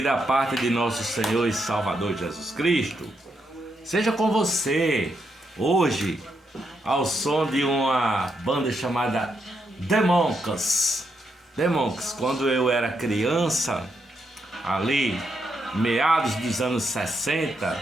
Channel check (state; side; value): normal; both; correlation 0.80